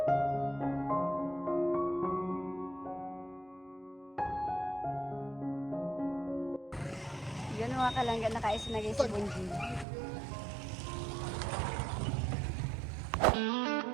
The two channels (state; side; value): drops out; left; at 9.9 s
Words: Yan mga kalangga na kaisinagay sa Bunjing.